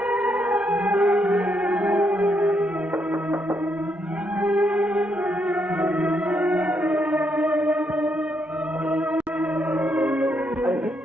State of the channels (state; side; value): normal; both; correlation 0.77